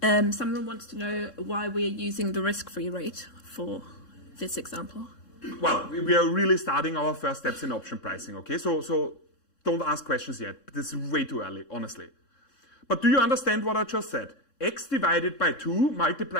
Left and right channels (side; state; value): right; late; 3.6 ms